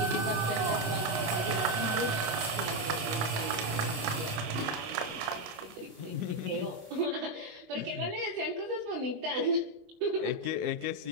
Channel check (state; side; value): late; left; 27 ms